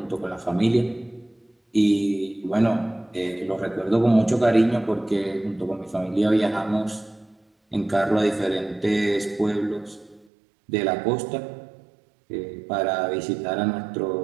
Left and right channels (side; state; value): left; drops out; at 10.2 s